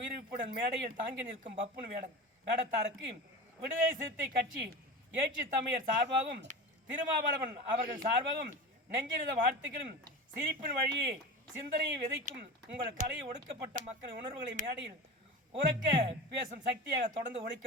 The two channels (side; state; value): both; normal; correlation 0.30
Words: மேடையில் தாங்கி நிற்கும் பப்புன் வேடத்தாருக்கு விடுதலை சிறுத்தை கட்சி ஏற்றி தமிழர் சார்பாகவும் திருமாவளவன் அவர்கள் சார்பாகவும் நெஞ்சிருந்த வாழ்த்துக்களும் சிரிப்பின் வழியே சிந்தனையை விதைக்கும் உங்கள் கலையை ஒடுக்கப்பட்ட மக்களின் உணர்வுகளை மேடையில் உறக்க பேசும் சக்தியாக தொடர்ந்து